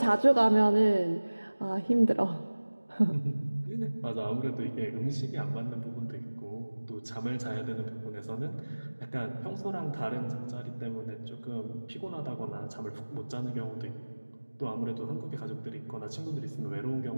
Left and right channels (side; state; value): both; inverted; correlation -1.00